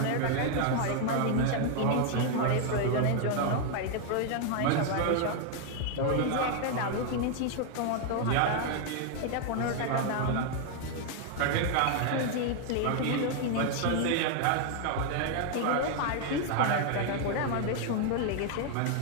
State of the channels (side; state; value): both; different; correlation 0.00